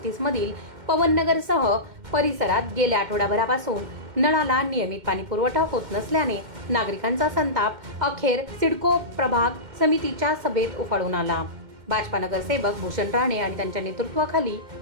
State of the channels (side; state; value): left; late; 2.1 ms